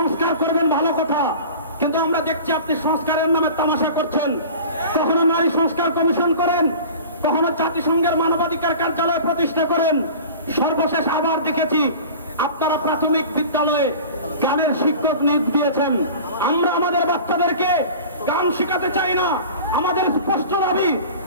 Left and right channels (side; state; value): both; inverted; correlation -0.39